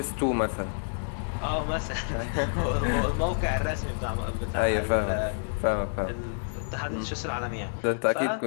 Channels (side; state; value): right; silent; digital silence